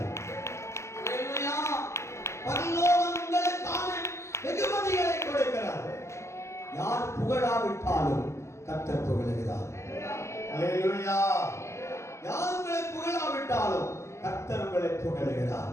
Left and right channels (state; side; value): late; right; 0.14 ms